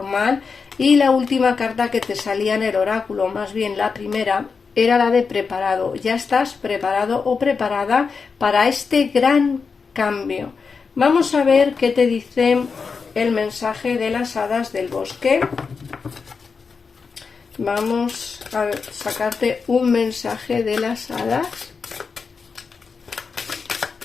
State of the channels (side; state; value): right; quieter; 5.2 dB